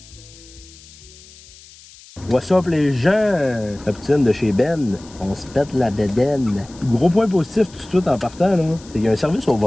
What's up les gens? La poutine de chez Ben, on se pète la bédaine. Gros point positif tout de suite en partant, là, c'est qu'il y a un service au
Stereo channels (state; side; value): noise; left; hiss, 22 dB below the sound